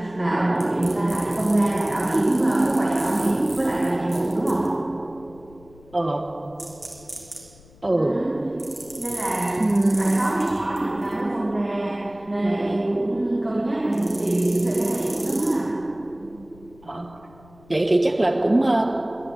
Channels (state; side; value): noise; left; rumble, 25 dB below the sound